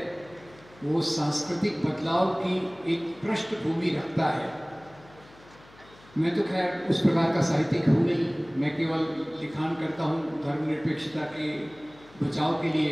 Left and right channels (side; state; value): left; noise; hum, 25 dB below the sound